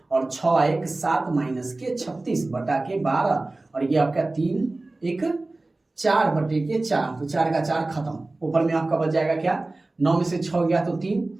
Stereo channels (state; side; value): quieter; left; 3.0 dB